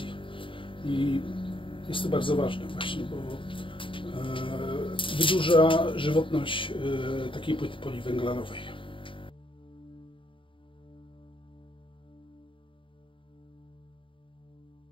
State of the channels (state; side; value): late; right; 0.25 ms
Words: I jest to bardzo ważne właśnie, bo wydłuża żywotność takiej płyty poliwęglanowej.